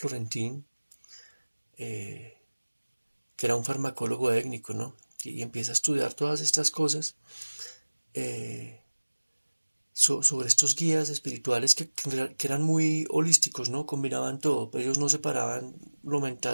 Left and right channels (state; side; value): inverted; both; correlation -1.00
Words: eh, que era un farmacólogo étnico, ¿no? Y empieza a estudiar todas estas cosas eh, sobre estos guías espirituales que eran muy holísticos, ¿no? Combinaban todo, ellos no separaban lo